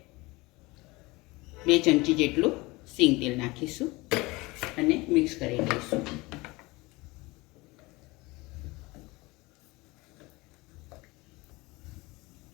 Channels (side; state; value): right; quieter; 22.9 dB